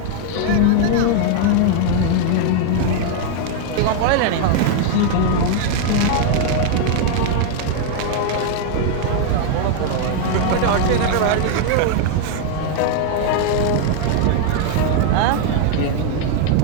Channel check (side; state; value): both; different; correlation 0.00